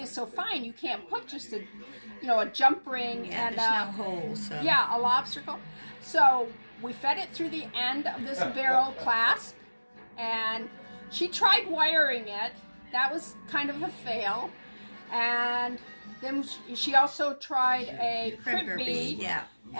is so fine, you can't put just a jump ring and there's no hole, so. Yeah, a lobster. So we fed it through the end of this barrel clasp, and she tried wiring it. That was kind of a fail. And then she also tried a crimp bead. Yeah.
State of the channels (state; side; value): inverted; both; correlation -1.00